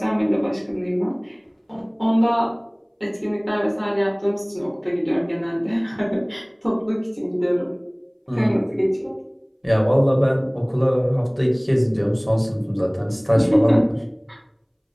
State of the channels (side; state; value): both; identical; correlation 1.00